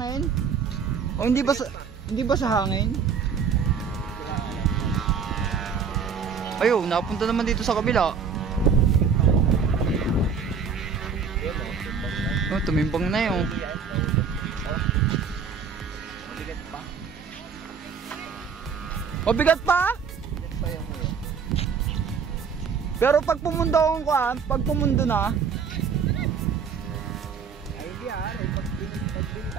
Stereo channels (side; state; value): left; quieter; 6.2 dB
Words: O hindi ba sa hangin? Ayo, napunta naman dito sa kabila. Oh, tumimbang na yun. Mabigat pa? Mabigat pa? Pero pag pumundo akong pag pumundo na,